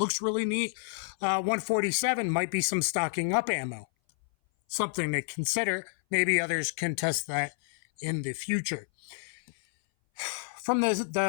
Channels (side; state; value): right; silent; 57 dB below the other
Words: really neat, 147 might be some stocking up ammo. Something to consider. Maybe others can test that in the future. From